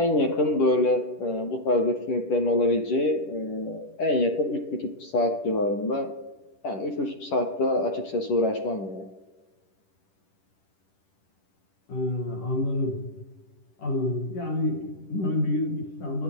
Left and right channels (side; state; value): right; late; 10 ms